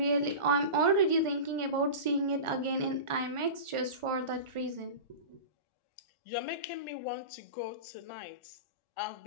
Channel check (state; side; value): late; left; 1.4 ms